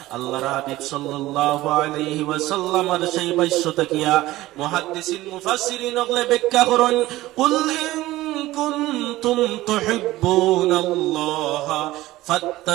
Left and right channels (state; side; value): quieter; left; 17.0 dB